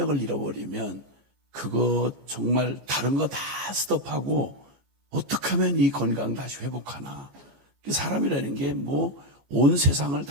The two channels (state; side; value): late; left; 14 ms